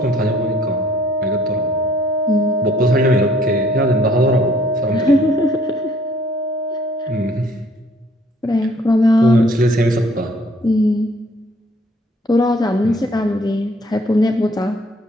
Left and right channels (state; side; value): normal; both; correlation 0.60